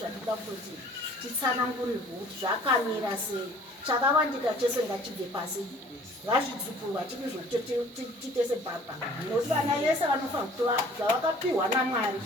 kutoti titsanangurirwe kuti zvakamira sei chakawandika chese ngachibve pasi ngazvidzukurwa titese baba nokuti vana yese vanofanira kutora zvavakapiwa namwari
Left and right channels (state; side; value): normal; both; correlation 0.52